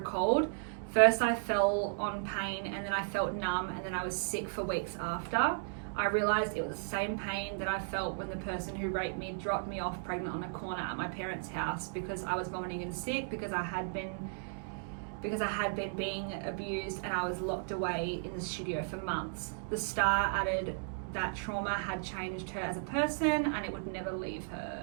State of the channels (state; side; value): silent; left; digital silence